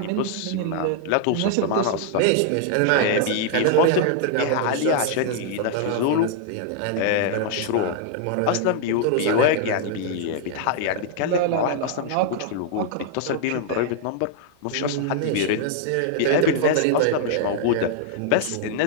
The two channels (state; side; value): different; both; correlation 0.00